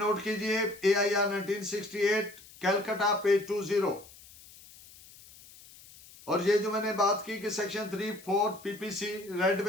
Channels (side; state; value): left; noise; hiss, 21 dB below the sound